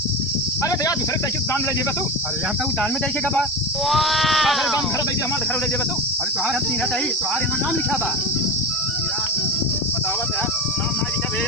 अरे तो यार दूसरे साइकिल दान ले जेबा तू अरे हम तो दान में दे के बा। घर दान Wow! घर दे हमारे घर ले जेबा तू अरे तुम्हारा हम तीन ही तुम्हारे यहाँ नाम लिखा बा। यार बतावत यार नाम ना लिखा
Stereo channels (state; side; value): normal; both; correlation 0.23